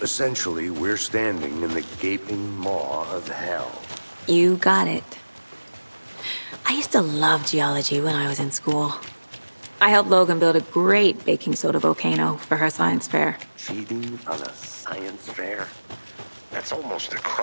essentially, we're standing in the gaping maw of hell. You got it. I used to love geology when I was in school. I helped Logan build a great baking soda volcano for her science fair. Cheating on a science fair? That's almost a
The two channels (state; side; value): inverted; both; correlation -1.00